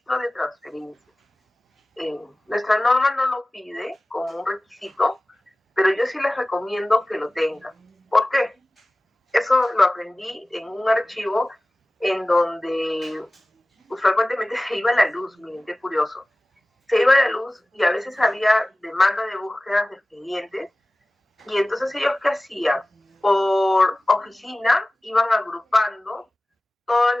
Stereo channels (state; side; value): normal; both; correlation 0.97